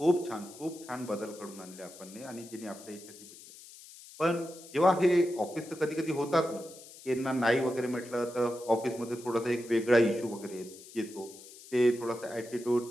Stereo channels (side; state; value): left; noise; hiss, 18 dB below the sound